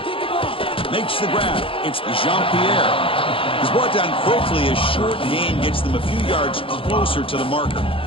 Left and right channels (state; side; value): late; right; 0.26 ms